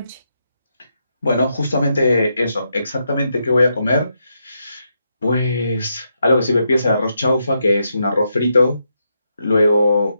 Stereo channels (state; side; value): inverted; both; correlation -0.82